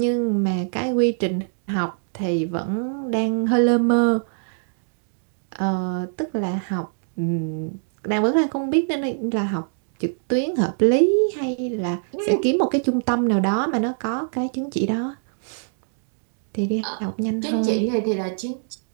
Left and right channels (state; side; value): silent; left; digital silence